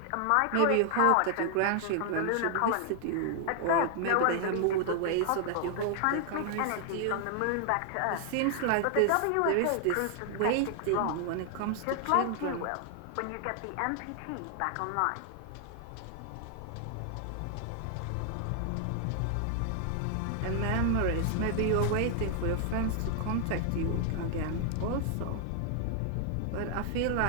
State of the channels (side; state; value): both; different; correlation 0.00